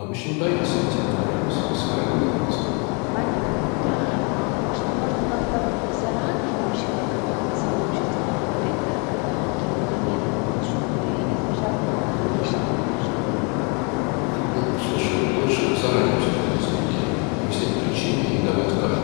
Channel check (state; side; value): quieter; right; 33.9 dB